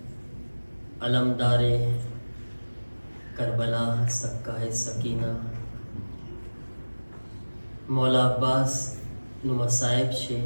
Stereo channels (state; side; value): inverted; both; correlation -1.00